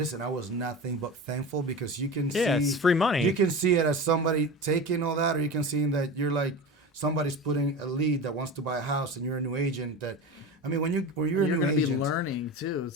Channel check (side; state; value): both; normal; correlation 0.28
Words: I was nothing but thankful, because you can see. Yeah, it's free money. You can see it as somebody taking all that, or you can see that you're like, somebody's putting a lead that wants to buy a house, and you're a new agent that. I mean, when you're a new agent, be learning too.